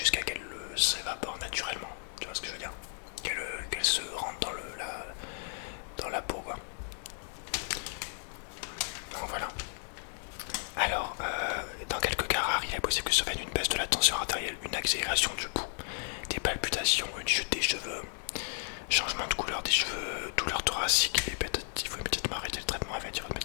qu'elle s'évapore naturellement. Tu vois ce que je veux dire? Qu'elle se rentre dans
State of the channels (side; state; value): right; silent; 55 dB below the other